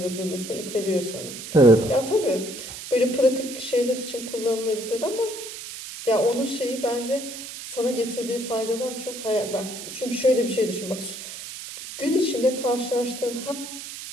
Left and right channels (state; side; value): noise; right; hiss, 10 dB below the sound